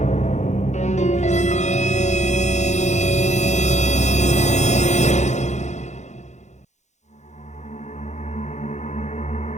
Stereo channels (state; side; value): late; right; 0.34 ms